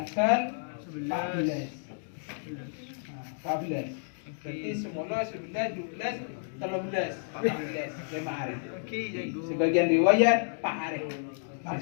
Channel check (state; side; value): silent; right; digital silence